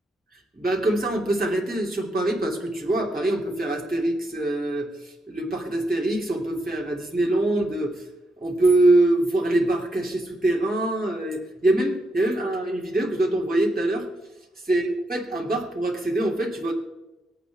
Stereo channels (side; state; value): both; normal; correlation 0.81